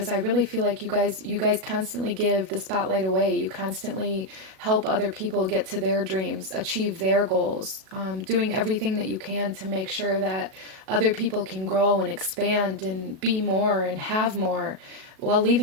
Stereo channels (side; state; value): left; late; 37 ms